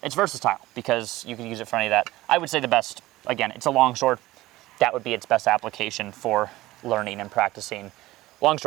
it's versatile because you can use it for any of that. I would say the best, again, it's a longsword. That would be its best application for learning and practicing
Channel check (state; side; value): quieter; left; 17.6 dB